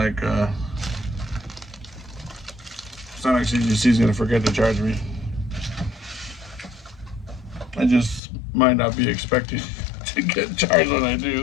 CGC is gonna forget to charge me. I just might not be expecting to get charged when I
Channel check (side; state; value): right; drops out; at 8.2 s